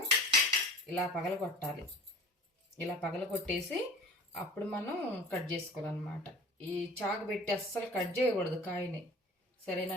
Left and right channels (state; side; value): normal; both; correlation 0.42